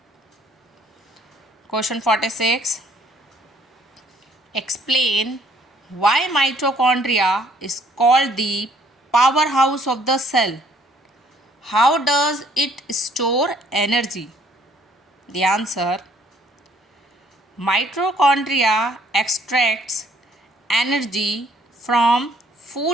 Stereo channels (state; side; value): normal; both; correlation 0.62